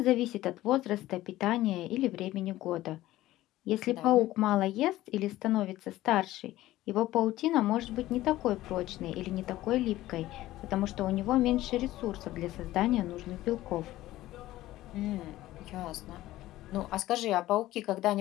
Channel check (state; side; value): quieter; right; 15.8 dB